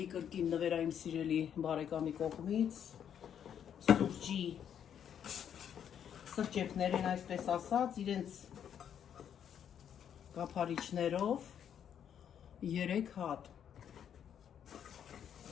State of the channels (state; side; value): quieter; right; 8.9 dB